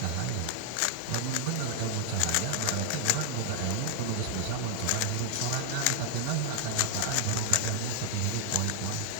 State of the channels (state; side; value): different; both; correlation 0.00